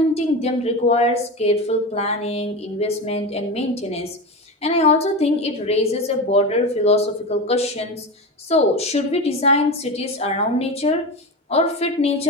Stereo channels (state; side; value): normal; both; correlation 0.23